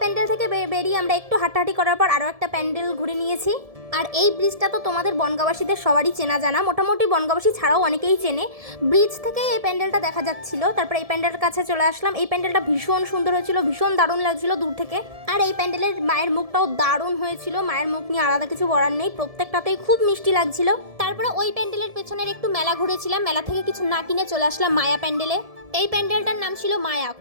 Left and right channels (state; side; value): late; left; 1.7 ms